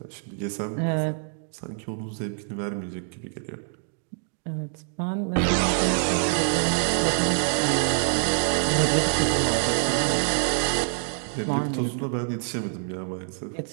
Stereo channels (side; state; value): left; silent; digital silence